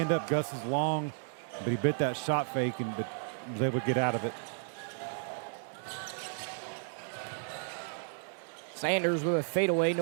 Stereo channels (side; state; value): left; silent; digital silence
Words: up. Gus is long, but he bit that shot fake and was able to get out of it. Sanders with a fadeaway,